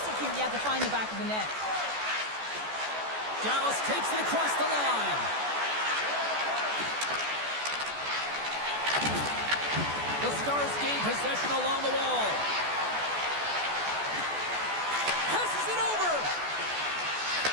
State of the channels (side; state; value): left; late; 14 ms